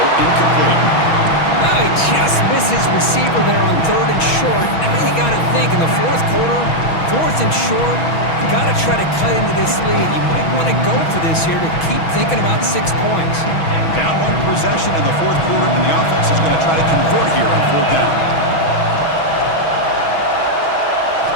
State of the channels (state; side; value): late; right; 6.2 ms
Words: incomplete. Well, he just misses receiver there on 3rd and short. Now you got to think in the fourth quarter, 4th and short, you got to try to cut into this lead. You might want to go for this here to keep thinking about 6 points. Down 1 possession in the fourth quarter, and the offense is going to try to convert here on 4th down.